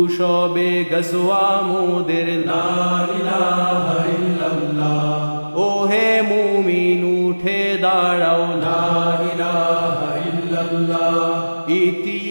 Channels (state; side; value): inverted; both; correlation -1.00